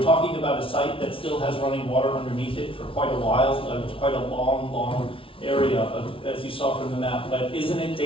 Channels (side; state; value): right; late; 0.26 ms